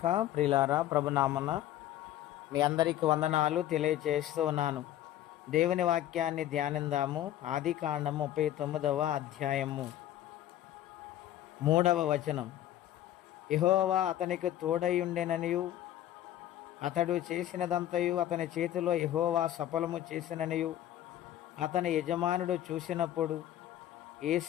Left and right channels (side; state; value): right; quieter; 12.6 dB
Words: ప్రియులారా, ప్రభునామన మీ అందరికీ వందనాలు తెలియచేస్తూ ఉన్నాను. దేవుని వాక్యాన్ని ధ్యానిందాము. ఆది కాండము 39వ అధ్యాయము 3వ వచనం. యెహోవా అతనికి తోడయుండెననియు అతడు చేసినదంతయు అతని చేతిలో యెహోవా సఫలము చేసిననియు అతని యజమానుడు చూసినప్పుడు